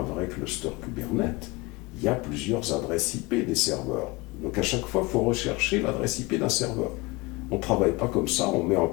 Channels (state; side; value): quieter; right; 23.6 dB